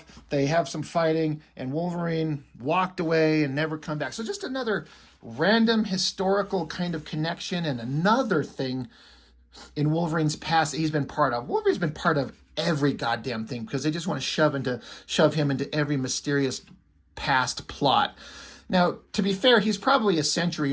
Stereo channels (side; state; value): both; identical; correlation 1.00